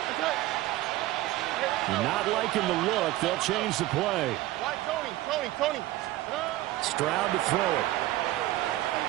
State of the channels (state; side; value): quieter; left; 16.3 dB